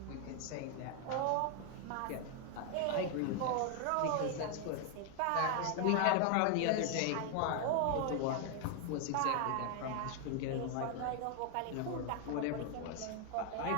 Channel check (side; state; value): both; different; correlation 0.00